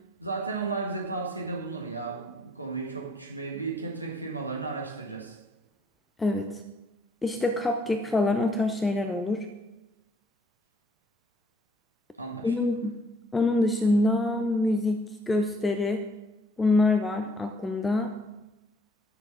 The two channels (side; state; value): both; normal; correlation 0.63